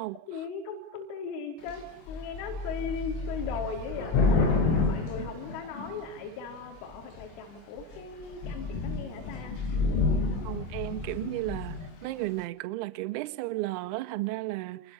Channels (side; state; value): right; late; 25 ms